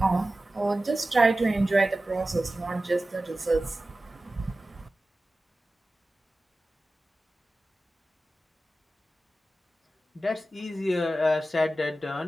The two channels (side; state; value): both; normal; correlation 0.95